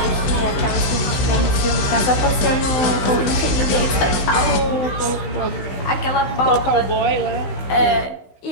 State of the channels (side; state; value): right; late; 16 ms